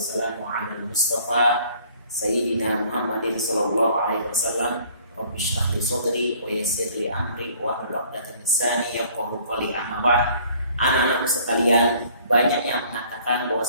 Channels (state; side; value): inverted; both; correlation -0.56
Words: ala al-mustafa Sayyidina Muhammadin sallallahu alaihi wasallam. Rabbi shrah li sadri wa yassir li amri wa hlul 'uqdatam min lisani yafqahu qawli. Amma ba'd. Anak-anakku sekalian, banyak yang mengatakan